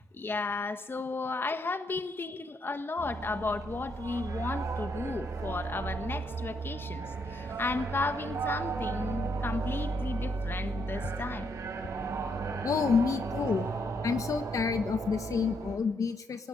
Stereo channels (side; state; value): both; normal; correlation 0.75